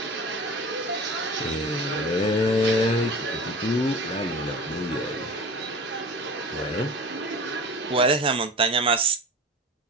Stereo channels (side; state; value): both; normal; correlation 0.37